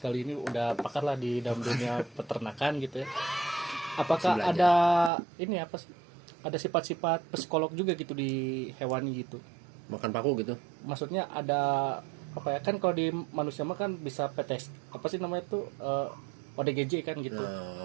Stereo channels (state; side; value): drops out; left; at 5.1 s